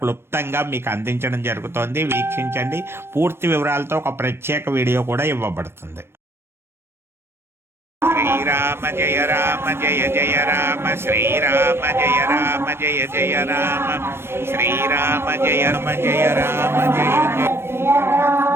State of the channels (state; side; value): late; left; 0.12 ms